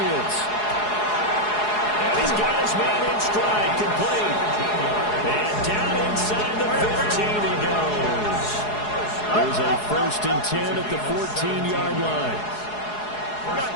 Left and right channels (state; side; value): late; right; 4.8 ms